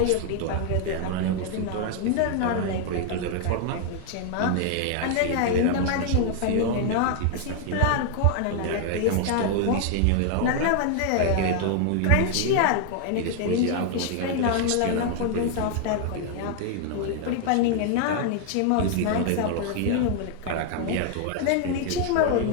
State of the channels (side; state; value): both; different; correlation 0.00